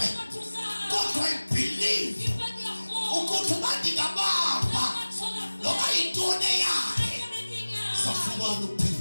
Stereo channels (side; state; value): both; inverted; correlation -1.00